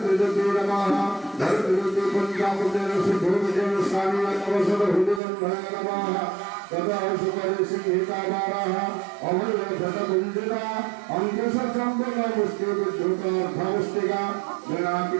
नमः धरित्रीदेवी पंचामृतेन सिद्धोपदेन स्वामिनवसरहृदिगन्धाय नमः तदा सुपरि सिंहिकाबाराः अभयशतकुञ्जिता अङ्कुशचम्बकमुष्टिविद्युतार्थमुष्टिका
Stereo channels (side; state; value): left; drops out; at 5.2 s